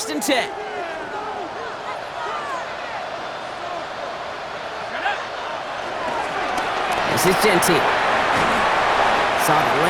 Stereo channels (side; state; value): both; identical; correlation 1.00